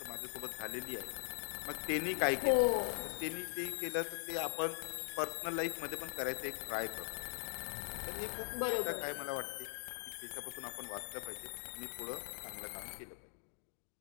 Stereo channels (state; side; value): silent; right; digital silence